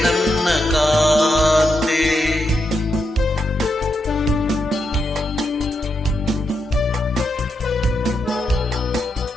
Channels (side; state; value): both; normal; correlation 0.83